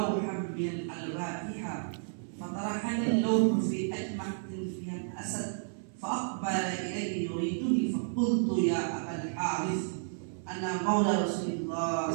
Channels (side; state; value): left; silent; 56 dB below the other